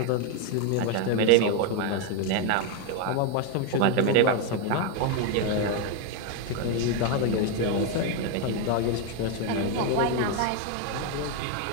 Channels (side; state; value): both; different; correlation 0.01